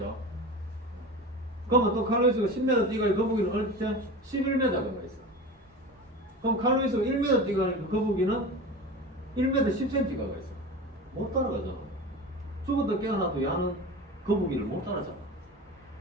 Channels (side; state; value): both; normal; correlation 0.31